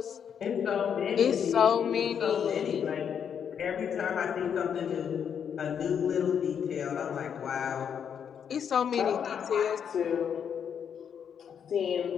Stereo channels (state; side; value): quieter; right; 7.9 dB